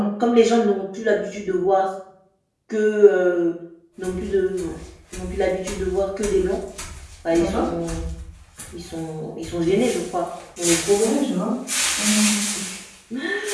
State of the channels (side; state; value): both; identical; correlation 1.00